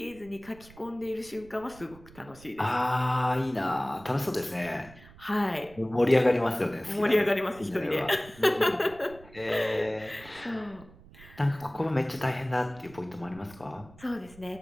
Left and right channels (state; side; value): noise; right; rumble, 22 dB below the sound